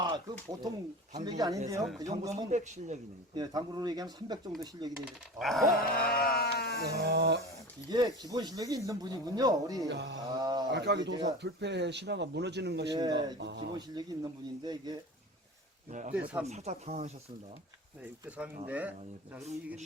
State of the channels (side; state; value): both; normal; correlation 0.34